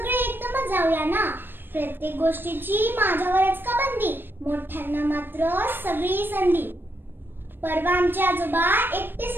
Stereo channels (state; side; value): late; left; 0.097 ms